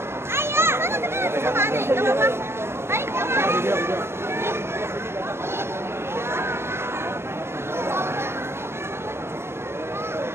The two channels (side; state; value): left; late; 0.12 ms